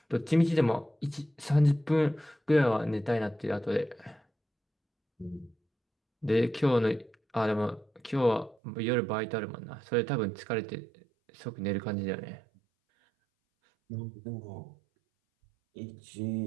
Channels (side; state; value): left; drops out; at 8.6 s